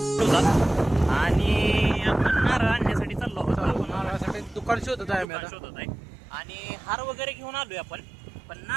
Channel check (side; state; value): left; drops out; at 5.2 s